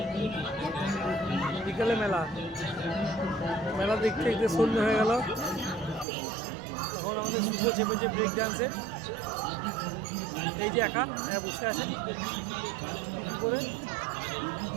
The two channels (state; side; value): drops out; left; at 6.1 s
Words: বিকেলে মেলা দেখতে দেখতে সন্ধ্যে হয়ে গেল। এখন আমাদের শুভ চেপেছে ব্রেক ডান্সে। এই যে একা বসে আছে করে